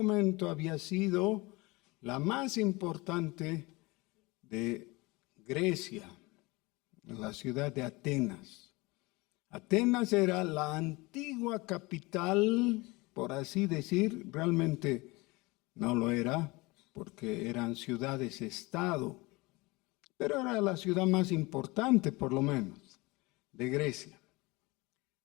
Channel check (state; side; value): quieter; right; 23.7 dB